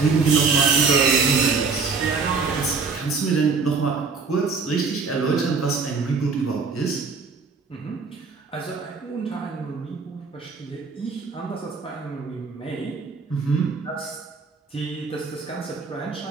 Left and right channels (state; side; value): quieter; left; 4.8 dB